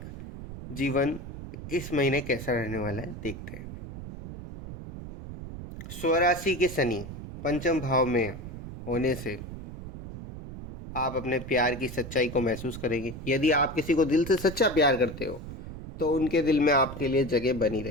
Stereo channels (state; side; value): noise; right; rumble, 10 dB below the sound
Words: जीवन इस महीने कैसा रहने वाला है, देखते हैं। स्वराशि के शनि पंचम भाव में होने से आप अपने प्यार की सच्चाई को महसूस करेंगे। यदि आप किसी को दिल से सच्चा प्यार करते हो तो उनके दिल में आपके लिए जगह बनी